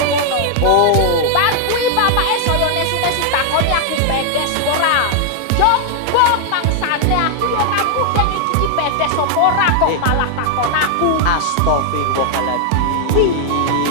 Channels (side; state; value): both; different; correlation 0.00